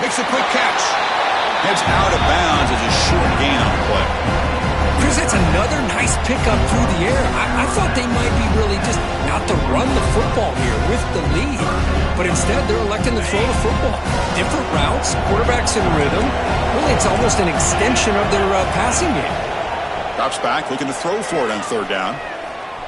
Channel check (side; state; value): both; identical; correlation 1.00